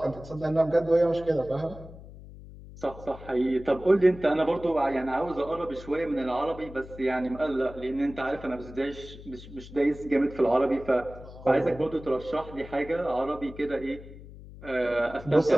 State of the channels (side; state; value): left; noise; hum, 16 dB below the sound